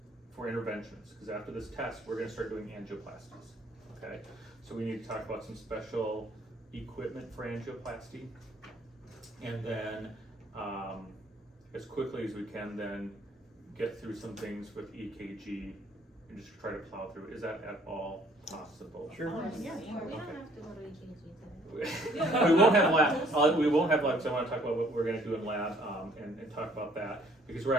for interventions. Because after this test, we're going to start doing angioplasties. Okay, so we need to talk about some special equipment for angioplasty, and then as quickly as we can, then get through some things with EKG and just try to plow through. Is that at all possible? Sure. Yeah. We don't Okay. have to go to EKG today. We won't have lab. We won't have lab. So I want to talk about what we're going to do in lab and talk about that, because we're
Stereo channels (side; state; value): both; normal; correlation 0.61